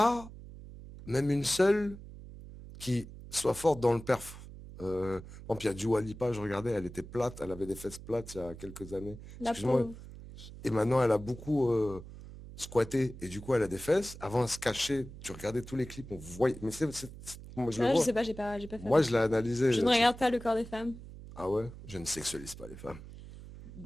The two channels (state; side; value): noise; right; hum, 15 dB below the sound